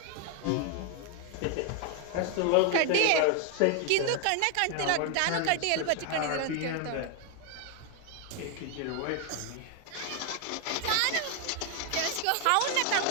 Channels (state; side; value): different; both; correlation 0.00